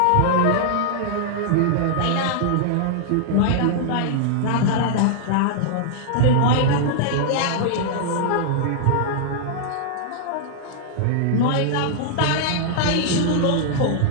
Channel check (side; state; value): both; different; correlation -0.01